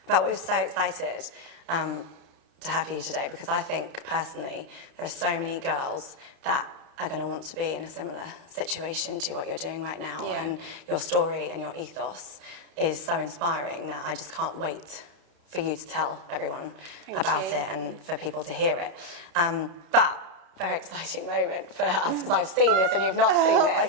But we're so excited to have you today because I think personally there are so many girls that are going to want to be in a similar situation to what you're doing right now, and your story and your ethos is so inspiring that I just can't wait for you to tell everyone about it and for people to hear it. But very exciting moment for us because I've seen this and you've not seen this. Oh my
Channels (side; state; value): left; late; 32 ms